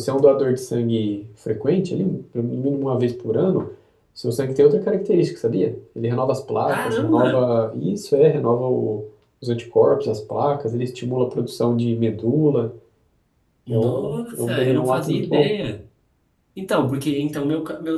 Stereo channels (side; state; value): both; identical; correlation 1.00